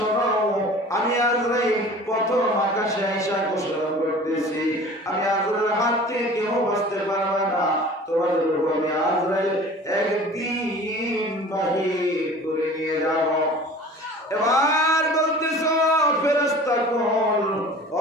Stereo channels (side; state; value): both; normal; correlation 0.43